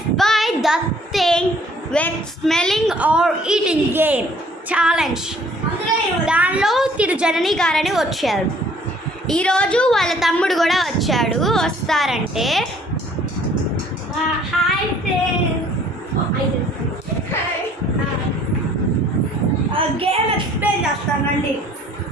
by the thing with smelling or eating game challenge. దానిలో తిరు జనని గారని వచ్చారు. ఈరోజు వాళ్ళ తమ్ముడు కూడా వచ్చాడు. వస్తారంటే హాయ్ గేమ్ ఎక్స్ప్లెయిన్ చేస్తానండి.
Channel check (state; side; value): normal; both; correlation 0.58